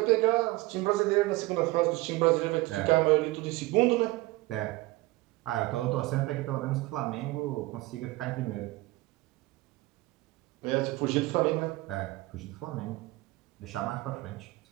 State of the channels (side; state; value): left; quieter; 20.3 dB